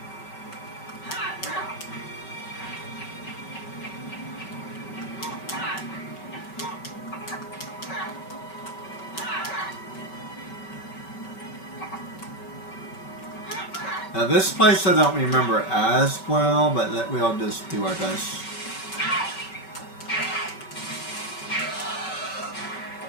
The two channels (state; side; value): late; right; 5.2 ms